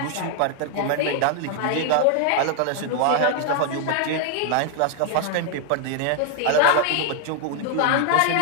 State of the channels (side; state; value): both; different; correlation 0.00